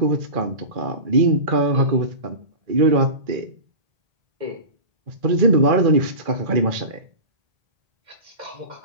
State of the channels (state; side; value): late; left; 2.4 ms